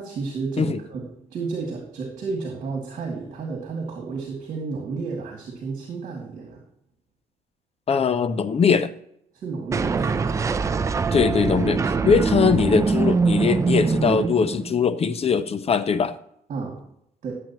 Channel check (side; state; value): both; normal; correlation 0.64